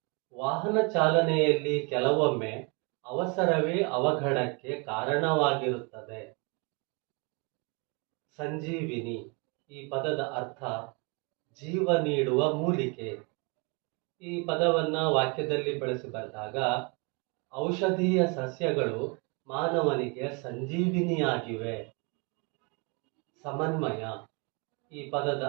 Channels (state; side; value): quieter; left; 31.8 dB